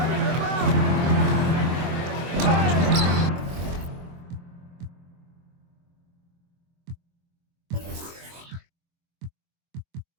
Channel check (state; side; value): late; left; 23 ms